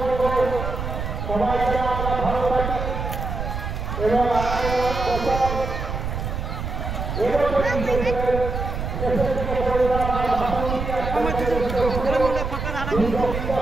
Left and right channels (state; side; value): noise; right; rumble, 4 dB below the sound